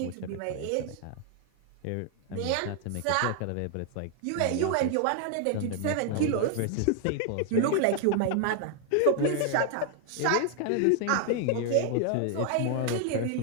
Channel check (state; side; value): different; both; correlation 0.00